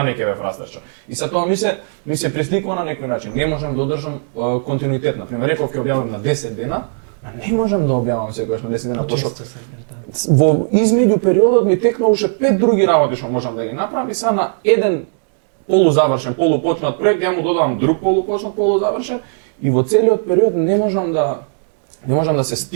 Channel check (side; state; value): left; silent; digital silence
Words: ќе ве фрастираше. И sa тоа ми се пресликува на некој начин. Не можам да одржам континуитет. Например, реков ќе објавам на 10 дена, а не можам да објавам секогаш на 10 дена. Почесто се да. Во измеѓу периодот ми текна уште 5 други работи што можам да ги направам и са на еден полузавршен, полупочнат проект, ја му додавам друг полупочнат, полузавршен и во целиот период не можам да се